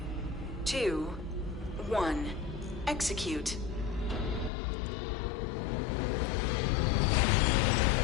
2, 1. Execute.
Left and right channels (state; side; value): drops out; right; at 4.5 s